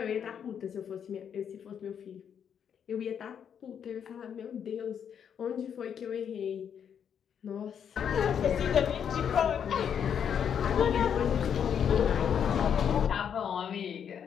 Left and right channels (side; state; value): right; quieter; 8.1 dB